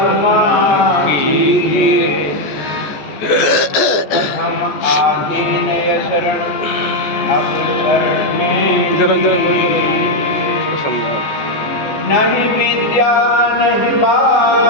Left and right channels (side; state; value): right; late; 14 ms